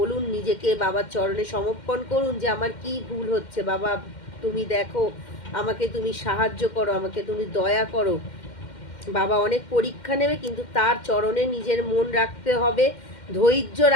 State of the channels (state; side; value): late; right; 2.1 ms